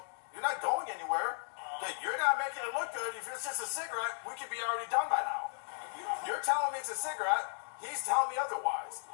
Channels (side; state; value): right; silent; digital silence